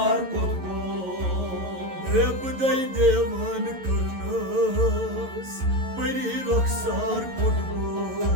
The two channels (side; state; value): left; late; 11 ms